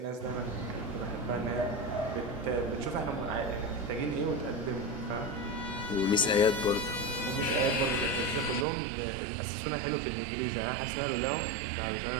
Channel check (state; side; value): drops out; left; at 8.7 s